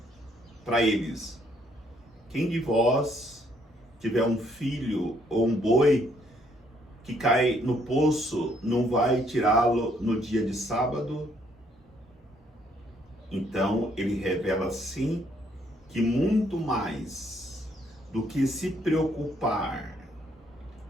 eles: quem de vós tiver um filho ou um boi que cai no poço, não vai tirá-lo no dia de sábado? Então ele revela assim que muito mais do que se preocupar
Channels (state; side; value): normal; both; correlation 0.68